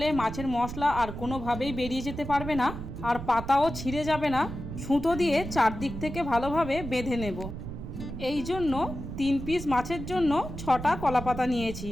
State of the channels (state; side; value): noise; right; rumble, 8 dB below the sound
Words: মাছের মশলা আর কোনোভাবেই বেরিয়ে যেতে পারবে না, আর পাতাও ছিঁড়ে যাবে না। সুতো দিয়ে চারদিক থেকে ভালোভাবে বেঁধে নেব। এই জন্য 3 পিস মাছের জন্য 6টা কলা পাতা নিয়েছি।